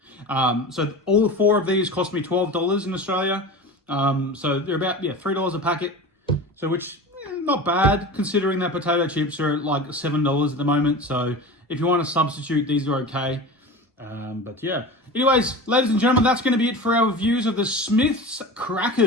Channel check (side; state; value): both; normal; correlation 0.32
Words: So all 4 of these cost me $12 in Australia. So they're about, $3 a packet. So which, not bad, considering that potato chips are like $7 at the moment. So if you want to substitute, these are okay. But yeah. Anyways, ladies and gentlemen, that's going to be it for our reviews of the Smith's